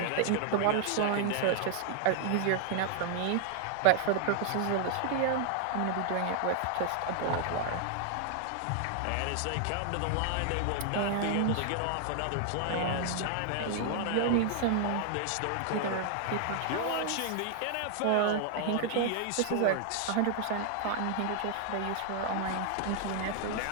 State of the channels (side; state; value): both; different; correlation 0.00